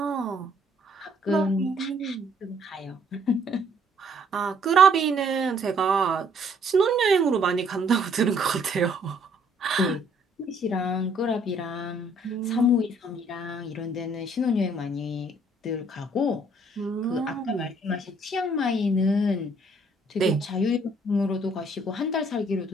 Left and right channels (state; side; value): normal; both; correlation 0.63